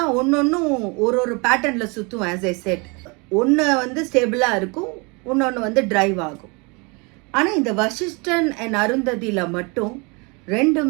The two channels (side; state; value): left; quieter; 29.7 dB